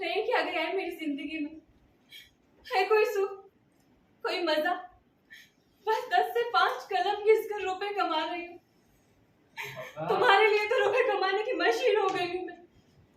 क्या गया है मेरी जिंदगी में? है कोई सुख, कोई मजा? बस 10 से 5 कलम घिसकर रुपए कमा रही हूँ। तुम्हारे लिए तो रुपए कमाने की मशीन हो गई हूँ मैं।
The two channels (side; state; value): both; identical; correlation 1.00